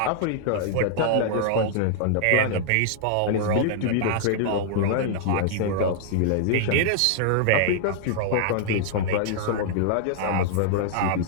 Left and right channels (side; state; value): both; different; correlation -0.01